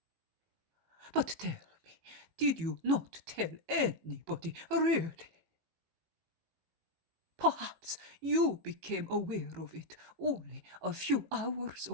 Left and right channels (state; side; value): late; left; 18 ms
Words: But tell me, did you not tell anybody really? Perhaps you became aware of it only a few hours